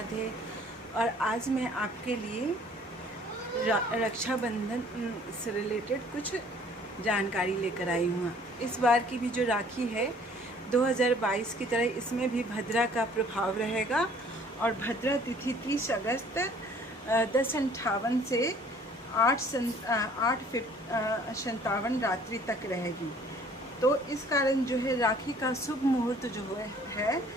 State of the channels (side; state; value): both; normal; correlation 0.55